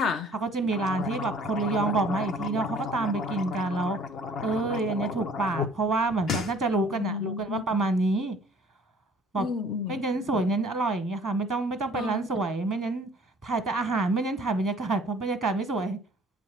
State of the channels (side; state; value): both; normal; correlation 0.54